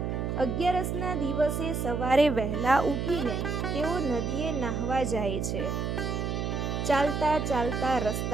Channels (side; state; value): right; noise; hum, 1 dB below the sound